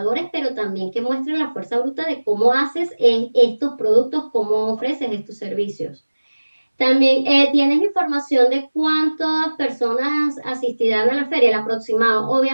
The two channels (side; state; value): both; inverted; correlation -1.00